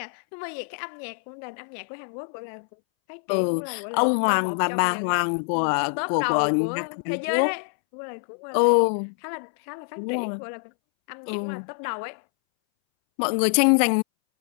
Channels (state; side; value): silent; right; 62 dB below the other